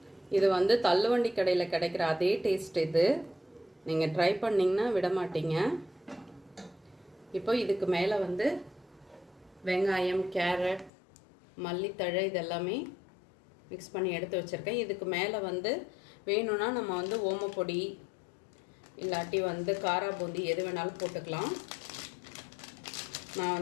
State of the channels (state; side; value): drops out; right; at 10.9 s